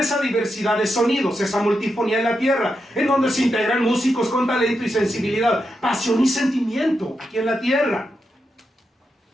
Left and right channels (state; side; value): normal; both; correlation 0.86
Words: diversidad de sonidos, esa multifonía en la tierra, en donde se integran músicos con talento y sensibilidad, pasión y sentimiento aquí en la tierra.